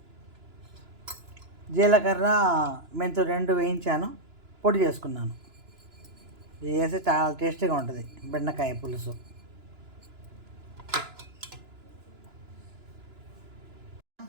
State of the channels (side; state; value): left; late; 2.9 ms